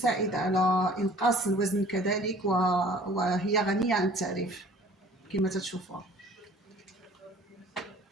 على انقاص الوزن كذلك وهي غنيه عن التعريف كما تشوفوها.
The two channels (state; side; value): normal; both; correlation 0.51